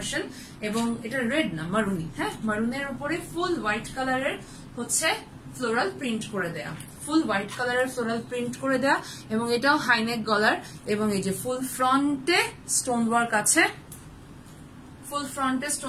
এবং এটা রেড না মারুনি। হ্যাঁ, মারুনের উপরে ফুল হোয়াইট কালারের হচ্ছে ফ্লোরাল প্রিন্ট করে দেয়া, ফুল হোয়াইট কালারের ফ্লোরাল প্রিন্ট করে দেয়া, এবং এটাও হাইনেক গলার, এবং এই যে ফুল ফ্রন্টে স্টোন ওয়ার্ক আছে, ফুল ফ্রন্টে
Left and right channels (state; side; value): identical; both; correlation 1.00